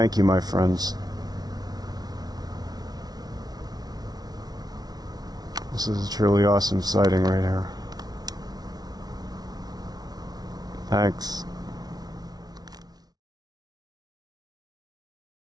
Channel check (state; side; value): late; left; 0.19 ms